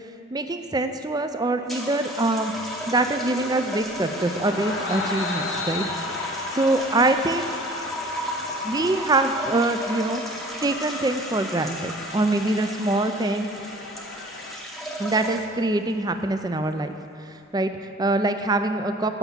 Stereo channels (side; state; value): both; normal; correlation 0.48